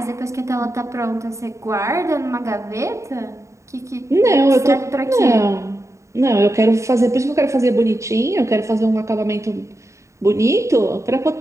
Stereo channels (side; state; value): left; late; 0.14 ms